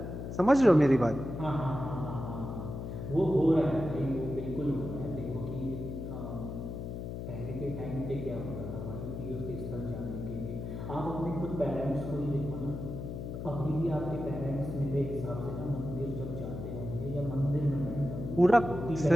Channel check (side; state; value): left; noise; hum, 6 dB below the sound